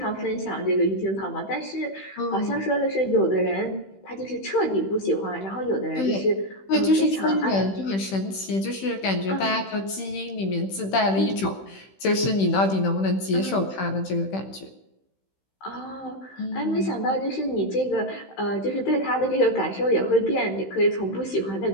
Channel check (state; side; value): late; right; 15 ms